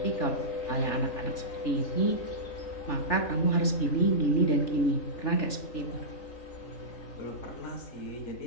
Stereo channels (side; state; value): right; late; 3.4 ms